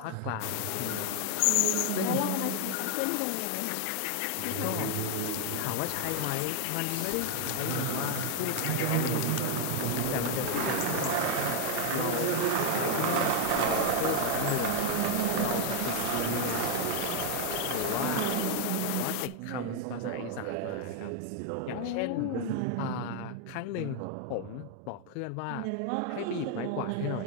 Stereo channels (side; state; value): both; different; correlation 0.01